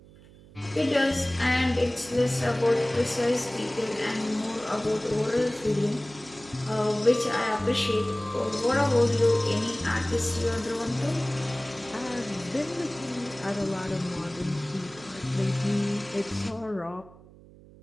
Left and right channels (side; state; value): right; noise; hum, 22 dB below the sound